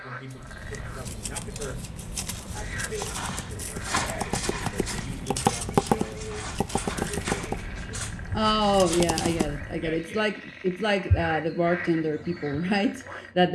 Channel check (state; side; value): identical; both; correlation 1.00